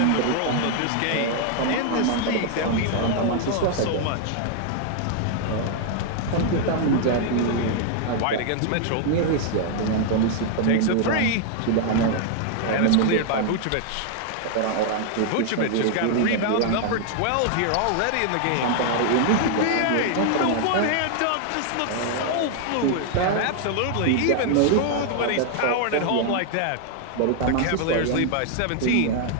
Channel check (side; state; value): both; different; correlation 0.00